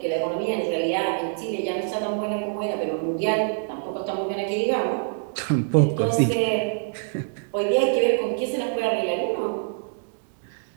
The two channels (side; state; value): left; silent; digital silence